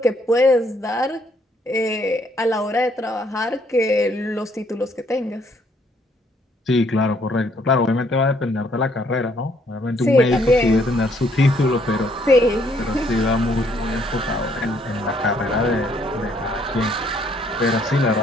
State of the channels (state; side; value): normal; both; correlation 0.67